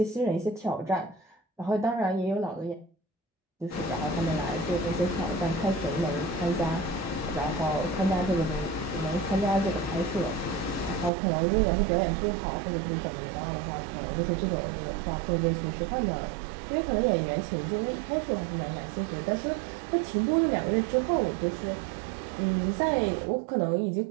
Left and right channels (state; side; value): drops out; left; at 11.1 s